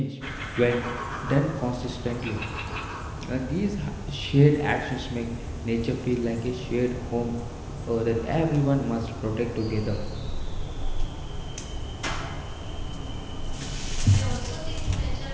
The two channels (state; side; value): identical; both; correlation 1.00